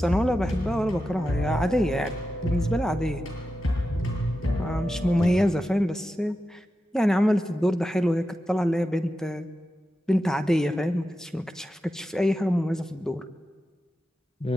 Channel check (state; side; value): normal; both; correlation 0.91